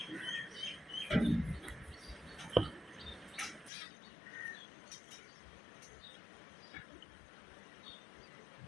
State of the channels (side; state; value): right; drops out; at 3.7 s